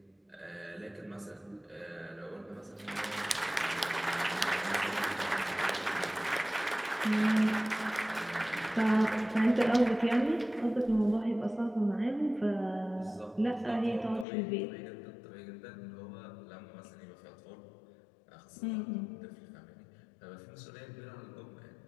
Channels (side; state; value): right; drops out; at 14.2 s